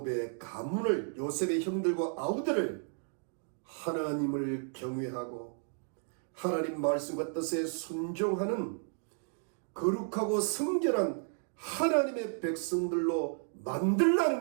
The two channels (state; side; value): silent; left; 56 dB below the other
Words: 가문을, 요셉의 형들과 아우들을 하나님을 경외하고 하나님 말씀과 뜻에 순종하는 거룩하고 성결한 하나님의 백성들로